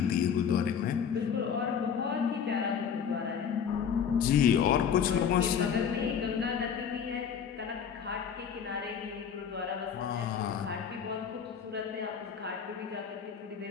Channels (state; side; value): quieter; right; 7.5 dB